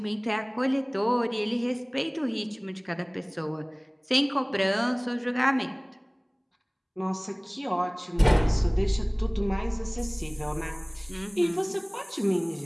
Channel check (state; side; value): identical; both; correlation 1.00